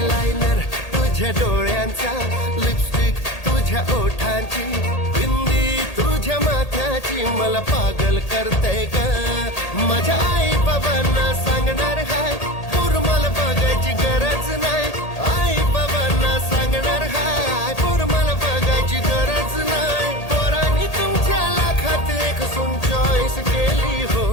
तुझ्या डोळ्यांचा लिपस्टिक तुझ्या ओठांची बिंदी तुझ्या माथ्याची मला पागल करते ग माझ्या आई बाबांना सांगणार हाय पूर मला बघायची गरज नाही आई बाबांना सांगणार हाय पूर मला बघायची गरज नाही पोरांनी तुमच्या लाखात एक सून चॉईस केली हो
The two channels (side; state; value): right; late; 1.8 ms